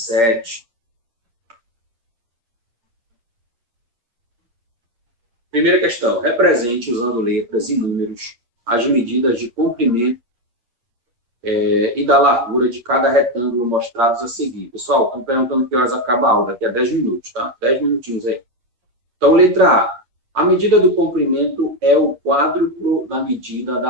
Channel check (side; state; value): left; late; 8.6 ms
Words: Primeira questão. Represente, usando letras e números, as medidas de comprimento e da largura de cada retângulo mostrados a seguir. Pessoal, estão perguntando que horas acaba a aula. Daqui a 10 minutos, tá? 10 minutinhos aí. Então, letra A. A medida do comprimento é o quádruplo da medida da